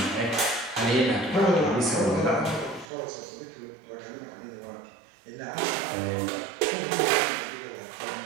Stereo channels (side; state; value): left; drops out; at 2.9 s